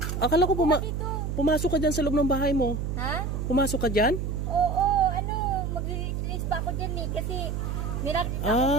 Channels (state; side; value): noise; right; hum, 2 dB below the sound